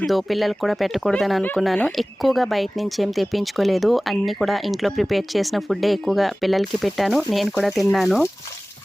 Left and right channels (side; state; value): both; normal; correlation 0.98